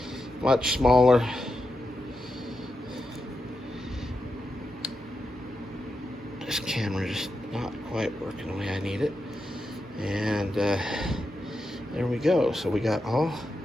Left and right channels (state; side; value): normal; both; correlation 0.87